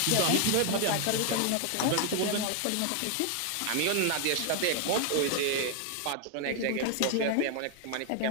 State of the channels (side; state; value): both; different; correlation 0.00